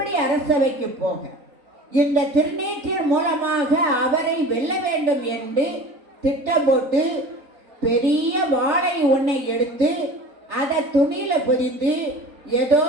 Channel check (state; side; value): late; left; 3.9 ms